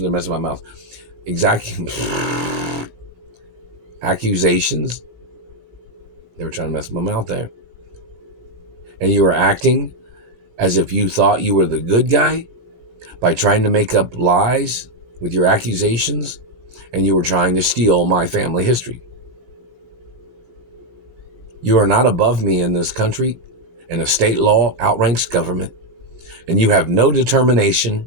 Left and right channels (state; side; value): late; left; 18 ms